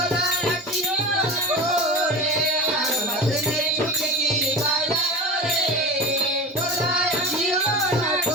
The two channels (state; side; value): normal; both; correlation 0.31